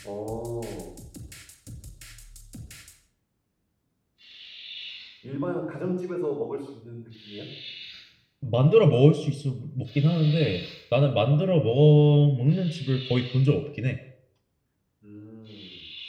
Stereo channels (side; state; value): both; identical; correlation 1.00